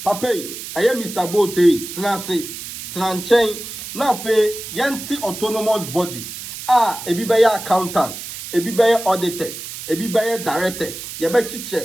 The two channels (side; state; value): right; noise; hiss, 10 dB below the sound